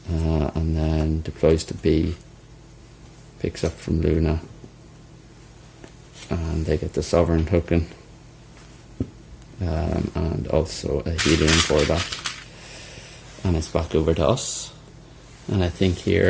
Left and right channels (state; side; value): identical; both; correlation 1.00